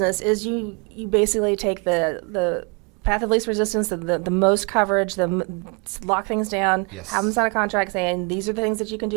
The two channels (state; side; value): quieter; left; 33.0 dB